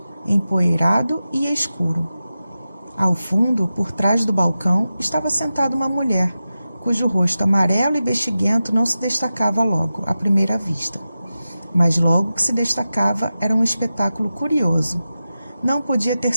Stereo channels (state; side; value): inverted; both; correlation -0.93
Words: empoeirado e escuro. Ao fundo, por trás do balcão, estava sentada uma mulher, cujo rosto amarelo e bexiguento não se destacava logo, à primeira vista. Mas logo que se destacava era um espetáculo curioso. Não podia ter